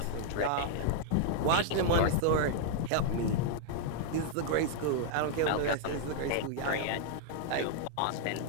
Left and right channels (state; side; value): different; both; correlation -0.01